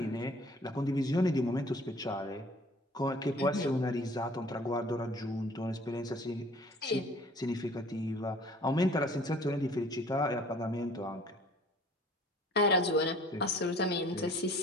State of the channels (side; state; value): both; normal; correlation 0.52